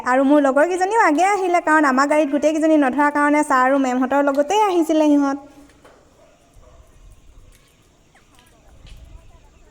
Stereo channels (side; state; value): both; identical; correlation 1.00